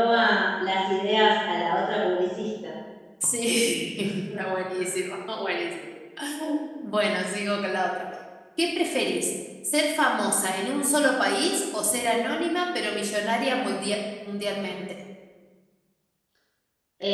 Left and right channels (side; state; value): both; identical; correlation 1.00